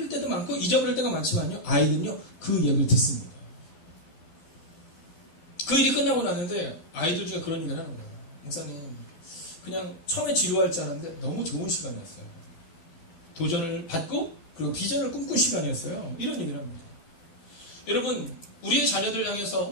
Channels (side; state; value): right; late; 12 ms